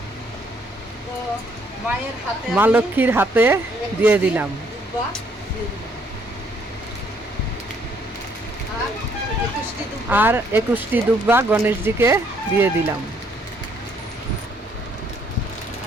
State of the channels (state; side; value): normal; both; correlation 0.67